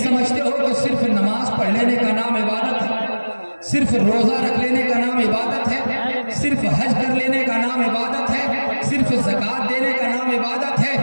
ہو کہ صرف نماز پڑھ لینے کا نام عبادت ہے، صرف روزہ رکھ لینے کا نام عبادت ہے، صرف حج کر لینے کا نام عبادت ہے، صرف زکوٰۃ دینے کا نام عبادت ہے۔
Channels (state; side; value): inverted; both; correlation -1.00